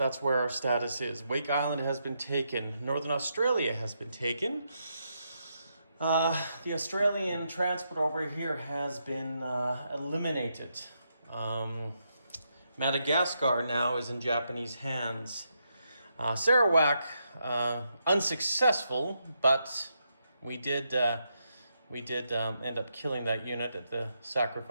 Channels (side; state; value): both; inverted; correlation -0.81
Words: our status is. Wake Island has been taken. Northern Australia has been taken. The Australian transport over here has been eliminated. Madagascar now is in Japanese hands. Sarawak, unsuccessful, but we did end up killing that unit at the